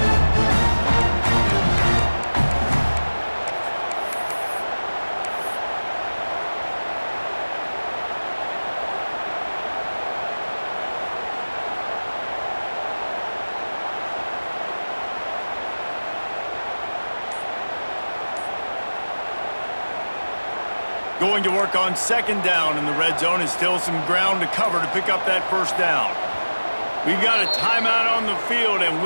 Going to work on second down in the red zone, and still some ground to cover to pick up that first down. We've got a timeout on the field, and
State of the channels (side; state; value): both; inverted; correlation -1.00